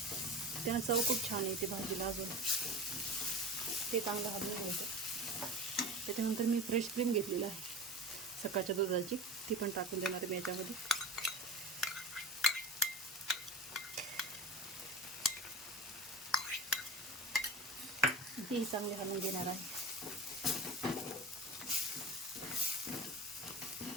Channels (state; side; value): normal; both; correlation 0.31